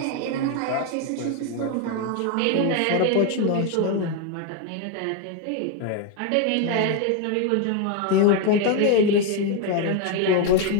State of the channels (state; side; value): different; both; correlation 0.02